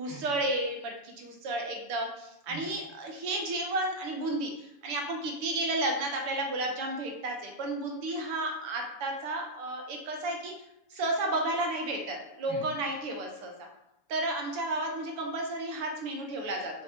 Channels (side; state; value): left; late; 7.0 ms